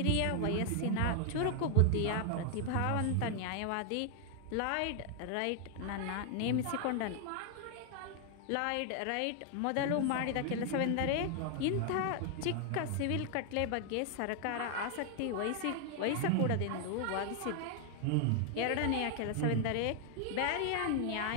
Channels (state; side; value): different; both; correlation 0.00